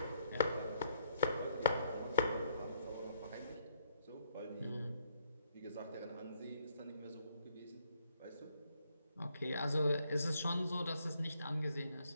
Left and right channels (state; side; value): inverted; both; correlation -0.71